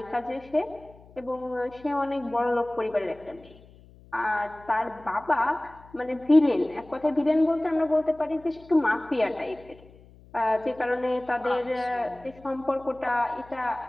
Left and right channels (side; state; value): left; noise; hum, 24 dB below the sound